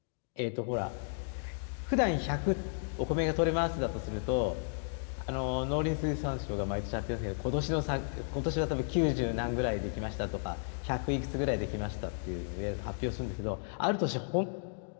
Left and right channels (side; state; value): right; silent; digital silence